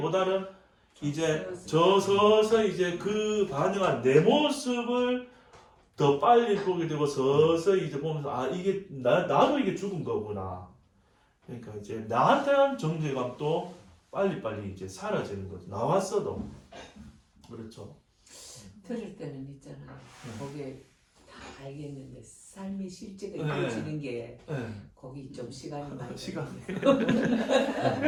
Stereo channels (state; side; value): identical; both; correlation 1.00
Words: 이제 서서히 이제 그 반응한 내 모습을 더 빨리 보게 되고 서서히 이제 보면서 이게 나도 이게 죽은 거구나. 그러니까 이제 나한테 한 정죄감도 빨리 이제 사라지는 거죠. 나왔어도. 그렇죠. 들을 때는 있잖아요. 거기에 다 알겠는데 삶의 실제가 이루어지는 게 거기 좀 시간이 많이